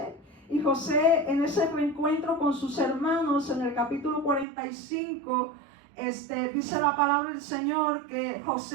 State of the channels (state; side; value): drops out; left; at 4.5 s